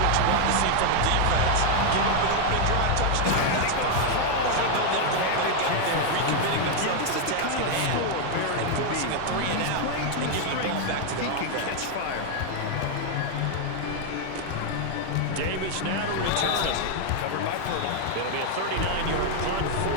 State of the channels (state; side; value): different; both; correlation 0.01